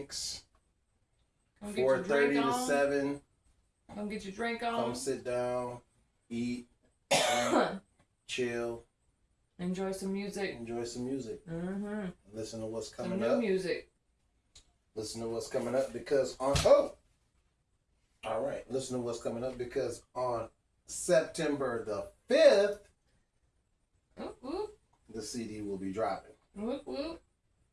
Come get your 4:30 drink to on. 7. Come get your drink Come on. sit down, eat, drink, chill, Enjoy some music. enjoy some music, Mm-hmm. listen to what's Some coming new up. music. Listen to what's coming up because on all right, listen to what's coming up because on September the 5th, Whoop, whoop. the CD will be dropping. Whoop, whoop.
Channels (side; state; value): both; identical; correlation 1.00